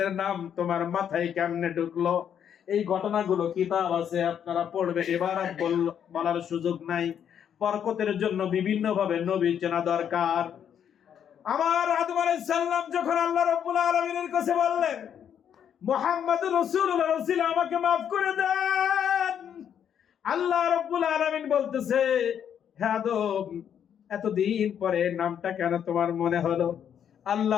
নাম তোমার মাথায় কেমনে ঢুকলো? এই ঘটনাগুলো কিতাব আছে, আপনারা পড়বে। এবার আর বলার সুযোগ নাই। বরকতের জন্য বিভিন্ন ভাবে নবী চেনা দরকার। আমার আদম আলাইহিস সালাম যখন আল্লাহ রাব্বুল আলামিনের কাছে বললেন, মুহাম্মদুর রাসূলুল্লাহ রাসূল আমাকে maaf করে দেন, আল্লাহ রাব্বুল আলামিন বলতেছে, হে আদম, এতদিন পরে নামটা কেন তোমার মনে হলো?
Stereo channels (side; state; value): right; quieter; 8.8 dB